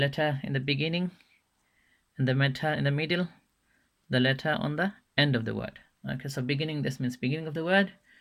in the beginning and the letter in the middle, the letter on the end of the word. Okay, so beginning, this means beginning of the word,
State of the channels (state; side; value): identical; both; correlation 1.00